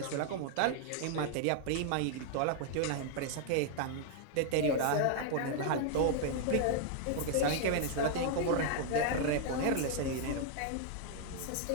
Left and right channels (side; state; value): both; different; correlation 0.00